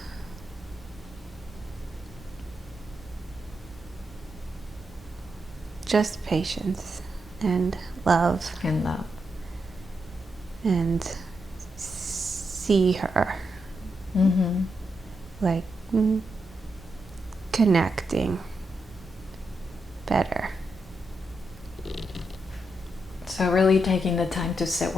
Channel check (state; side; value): normal; both; correlation 0.84